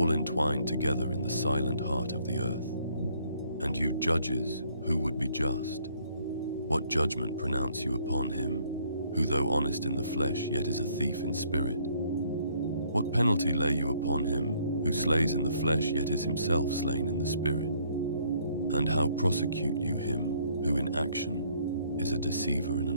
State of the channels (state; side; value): inverted; both; correlation -0.64